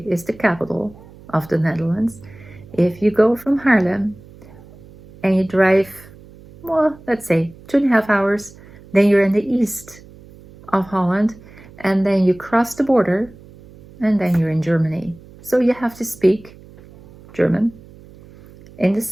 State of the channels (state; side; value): noise; right; hum, 22 dB below the sound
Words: is the capital of the Netherlands. If you go from Haarlem and you drive, well, let's say 2.5 hours, then you're in the east of Holland, and then you cross the border, and then you're in Germany. So you have to speak German. In the